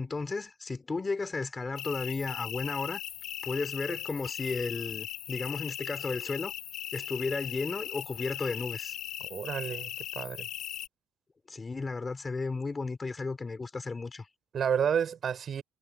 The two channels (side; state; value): both; normal; correlation 0.80